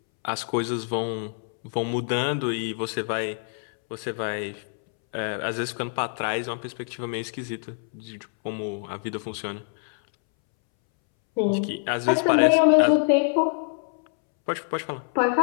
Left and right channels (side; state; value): right; silent; 61 dB below the other